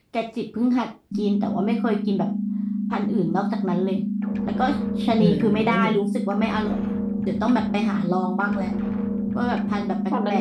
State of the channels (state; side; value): identical; both; correlation 1.00